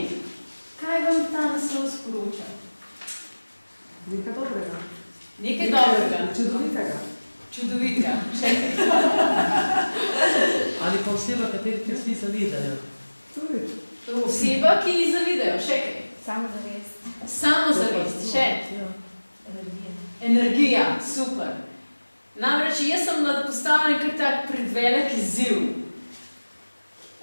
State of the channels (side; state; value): both; inverted; correlation -1.00